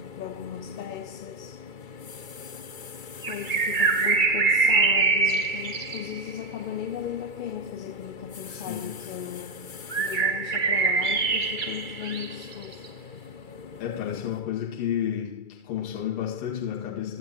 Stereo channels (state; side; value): late; right; 2.3 ms